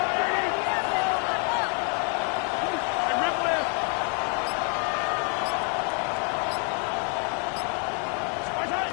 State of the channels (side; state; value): right; quieter; 39.7 dB